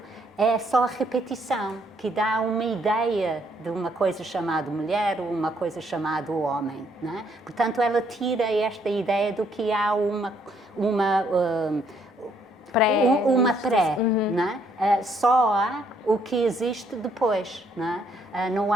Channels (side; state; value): both; normal; correlation 0.69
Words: é só a repetição, que dá uma ideia de uma coisa chamada mulher ou uma coisa chamada homem. Não é? Portanto, ela tira esta ideia do que há uma pré, não é? Só há o que existe depois. Não é? Não